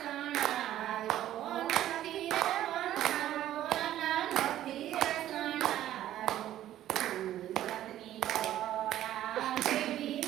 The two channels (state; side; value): quieter; left; 12.8 dB